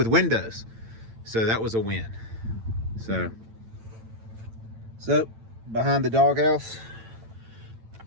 windows, so that was a win. So behind the doghouse,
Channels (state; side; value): late; left; 9.0 ms